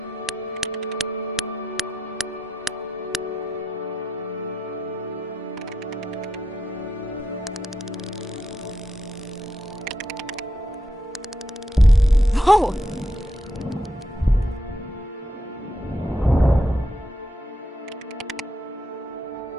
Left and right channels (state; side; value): normal; both; correlation 0.84